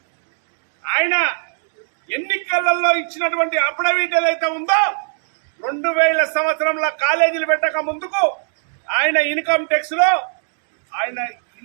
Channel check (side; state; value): left; silent; digital silence